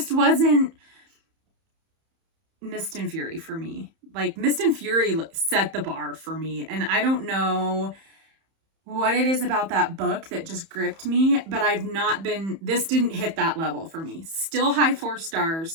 wasn't Mist and Fury for me. Like, Mist and Fury set the bar for me, and I don't know what it is about that book that just gripped me, but this didn't hit that level for me. Still high 4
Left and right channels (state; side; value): late; left; 31 ms